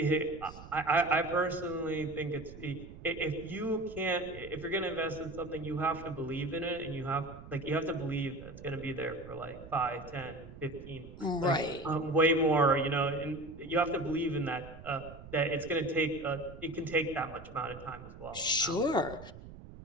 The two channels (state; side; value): noise; right; rumble, 15 dB below the sound